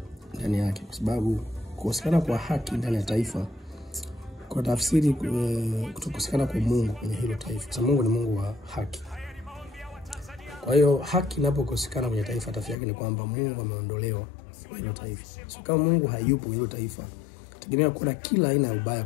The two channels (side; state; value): right; drops out; at 12.8 s